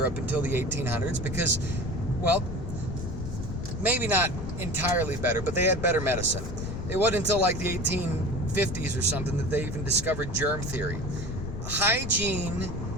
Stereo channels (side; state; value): left; noise; rumble, 6 dB below the sound